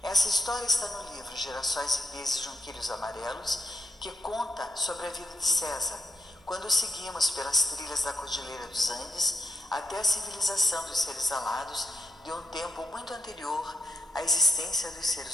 Essa história está no livro Girassóis e Pesos Junquilhos Amarelos, que conta sobre a vida de César, quando seguimos pelas trilhas da Cordilheira dos Andes até a civilização dos seres alados de um tempo muito anterior à existência dos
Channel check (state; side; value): normal; both; correlation 0.82